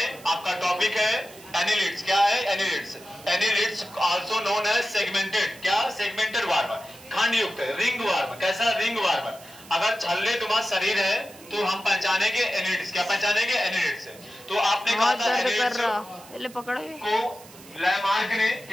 आपका टॉपिक है एनिलिड्स। क्या है? Annelids. Annelids also known as segmented. क्या? सेगमेंटेड वर्म, खंड युक्त रिंग वर्म। कैसा? Ring worm. अगर छल्ले तुम्हारा शरीर है तो हम पहचानेंगे एनिलिड्स। क्या पहचानेंगे? एनिलिड्स। तो आपने कहा था एनिलिड्स को लैमार्क ने,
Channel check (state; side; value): noise; right; hiss, 21 dB below the sound